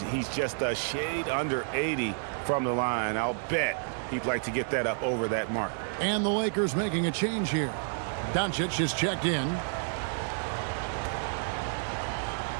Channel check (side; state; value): left; silent; 58 dB below the other